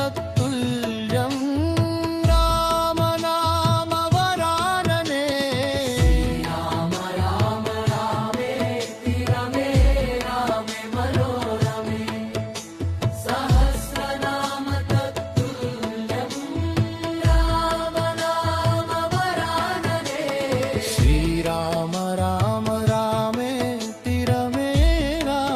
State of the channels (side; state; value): both; identical; correlation 1.00